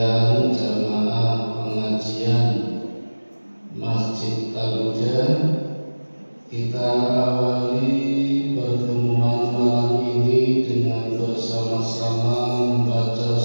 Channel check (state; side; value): inverted; both; correlation -1.00